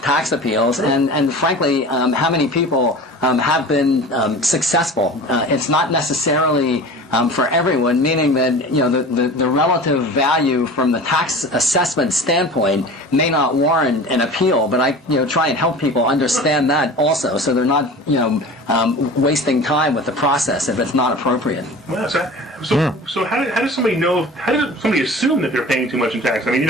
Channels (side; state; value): both; normal; correlation 0.38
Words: tax appeals, and frankly, how many people have been successful. It's not necessarily for everyone, meaning that the relative value from the tax assessment standpoint may not warrant an appeal, but I try and help people understand that also, so they're not wasting time with the process if it's not appropriate. Well, so how does somebody know? How does somebody assume that they're paying too much in tax? I mean,